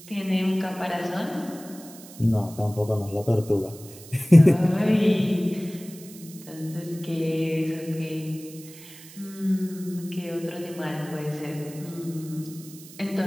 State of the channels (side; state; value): right; noise; hiss, 18 dB below the sound